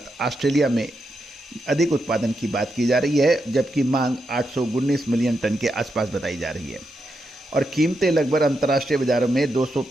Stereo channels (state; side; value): normal; both; correlation 0.84